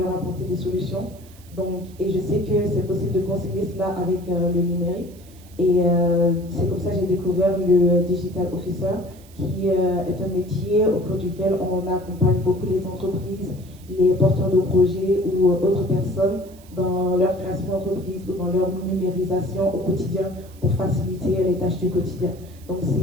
apporter des solutions. Donc, et je sais que c'est possible de concilier cela avec le numérique. Et c'est comme ça que j'ai découvert le Digital Officer, qui est un métier au cours duquel on accompagne beaucoup les entreprises, les porteurs de projets ou autres personnes dans leur création d'entreprise ou dans leur numérisation au quotidien pour faciliter les tâches du quotidien. Donc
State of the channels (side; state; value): right; noise; hiss, 25 dB below the sound